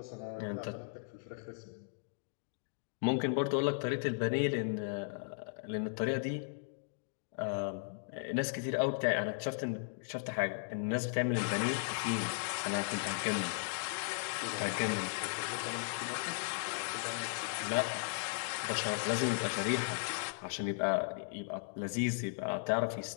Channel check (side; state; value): right; silent; digital silence